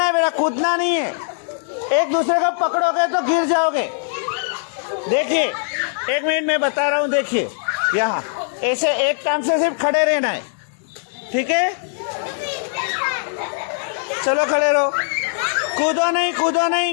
है बेटा, कूदना नहीं है। एक दूसरे को पकड़ोगे तो गिर जाओगे। देखिए 1 मिनट में बता रहा हूं, देखिए यहाँ ऐसे एक टांग से सिर्फ खड़े रहना है, ठीक है? चलो खड़े रहो, कूदो नहीं, कूदो नहीं,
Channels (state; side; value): silent; right; digital silence